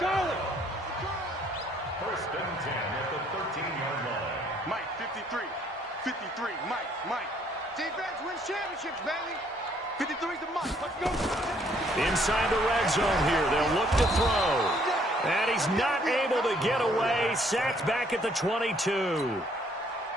First and 10 at the 13-yard line. Mike, 53. 53, Mike. Defense wins championships, baby. 53's the Mike. Let's go. Inside the red zone here. They'll look to throw. And he's not able to get away. Sacked back at the 22.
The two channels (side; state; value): both; normal; correlation 0.65